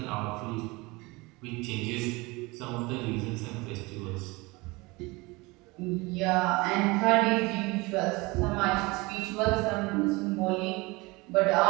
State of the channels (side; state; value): left; quieter; 24.0 dB